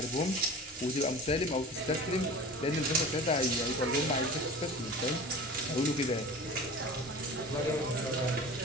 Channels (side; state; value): both; normal; correlation 0.37